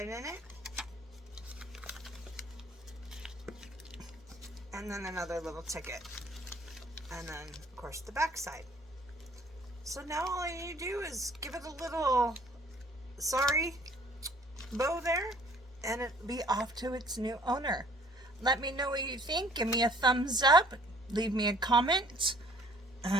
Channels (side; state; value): both; normal; correlation 0.56